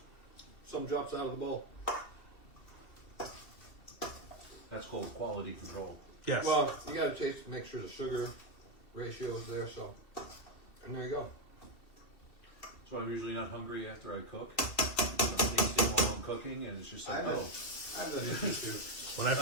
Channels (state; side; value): late; right; 2.7 ms